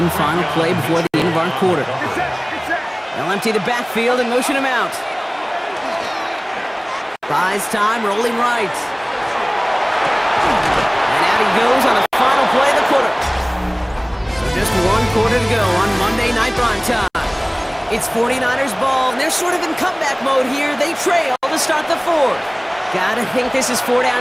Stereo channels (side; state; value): both; identical; correlation 1.00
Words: final play before the end of our quarter. They'll empty the backfield and motion him out. Buys time, rolling right. And out he goes on the final play of the quarter. So just one quarter to go on Monday Night Prime Time. It's 49ers ball, and they're sort of in comeback mode here. They trail to start the fourth. Gotta think this is